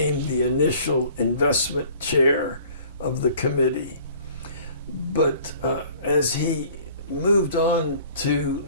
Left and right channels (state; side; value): inverted; both; correlation -0.51